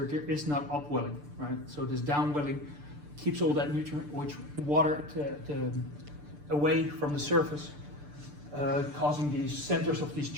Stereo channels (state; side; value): late; left; 6.8 ms